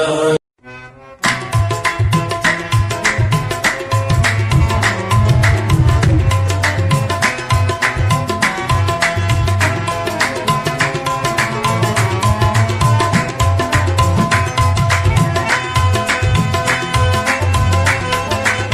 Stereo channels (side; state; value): both; identical; correlation 1.00